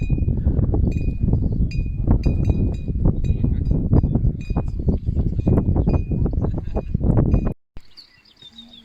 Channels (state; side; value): identical; both; correlation 1.00